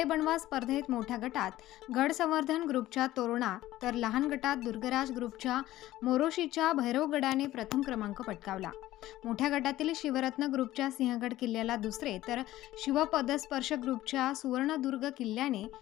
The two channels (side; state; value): right; quieter; 15.3 dB